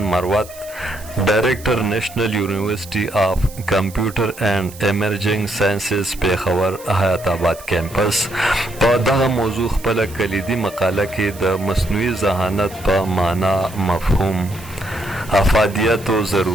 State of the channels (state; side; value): noise; right; hiss, 18 dB below the sound